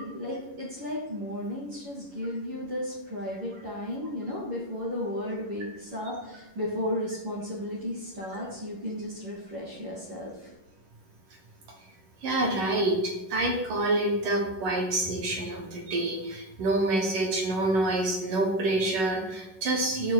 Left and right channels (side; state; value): left; late; 11 ms